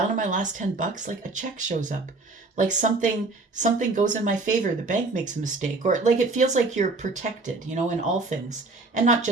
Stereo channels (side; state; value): left; quieter; 3.4 dB